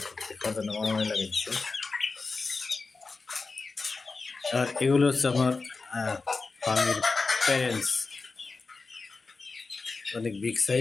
খাওয়ার মারামারি লাগাইছে। আর এগুলো হচ্ছে আমার ফার্মির প্যারেন্টস, অনেক বিগ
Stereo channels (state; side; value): quieter; right; 4.1 dB